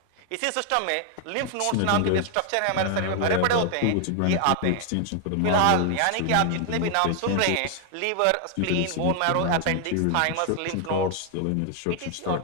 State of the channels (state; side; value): different; both; correlation 0.00